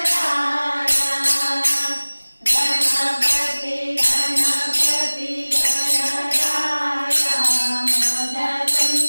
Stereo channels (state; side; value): inverted; both; correlation -1.00